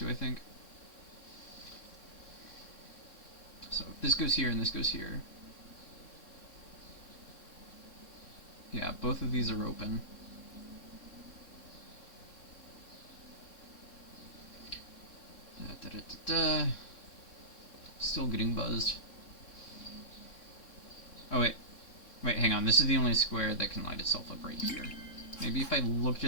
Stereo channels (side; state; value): right; late; 3.6 ms